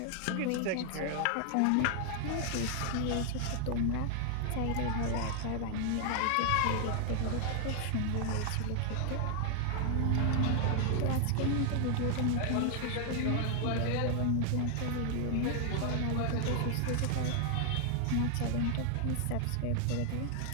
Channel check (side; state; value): both; different; correlation 0.00